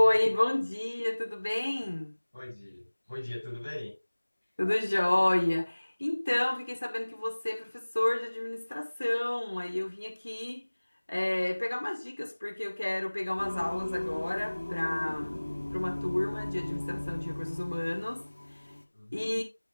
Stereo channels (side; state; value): both; inverted; correlation -1.00